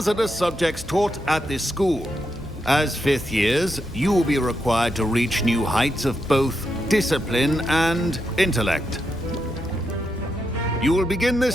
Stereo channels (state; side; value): normal; both; correlation 0.83